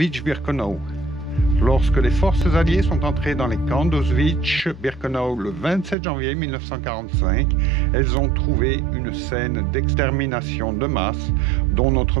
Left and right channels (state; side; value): drops out; left; at 6.0 s